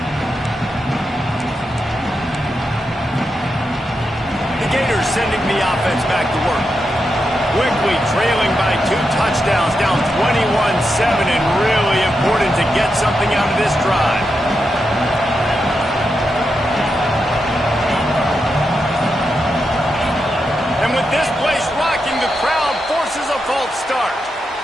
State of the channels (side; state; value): both; normal; correlation 0.86